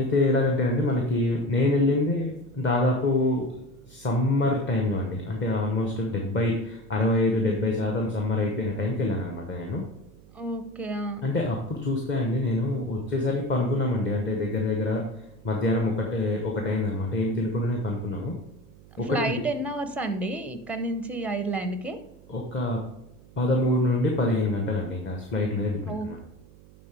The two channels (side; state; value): right; noise; hum, 23 dB below the sound